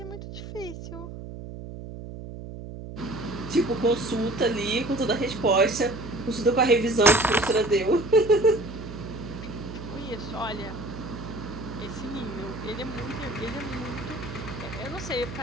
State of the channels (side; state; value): right; noise; hum, 11 dB below the sound